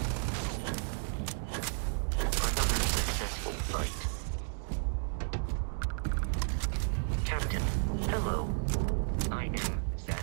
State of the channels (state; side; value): silent; left; digital silence